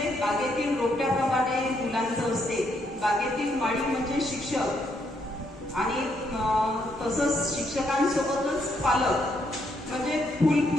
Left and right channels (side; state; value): both; normal; correlation 0.75